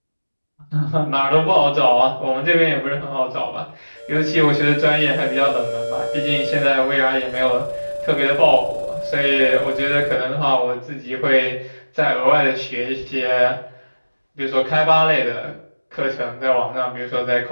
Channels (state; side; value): inverted; both; correlation -1.00